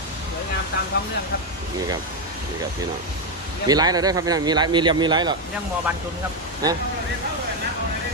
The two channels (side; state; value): both; normal; correlation 0.06